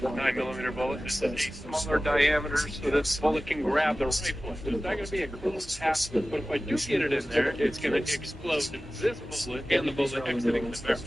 bullet. This is a smaller diameter so that the bullet can grab the rifle. It's not going to be a clean path, but if I do get it in there, it's going to explode this bullet and the bullet exiting the barrel.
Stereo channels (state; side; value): normal; both; correlation 0.96